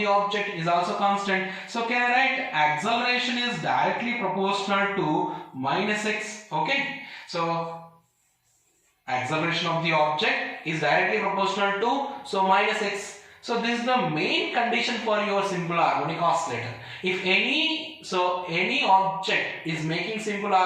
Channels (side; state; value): both; identical; correlation 1.00